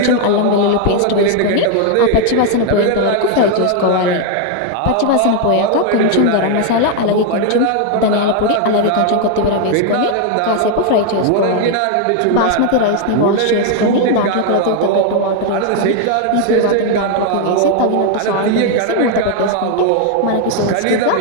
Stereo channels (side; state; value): both; different; correlation 0.01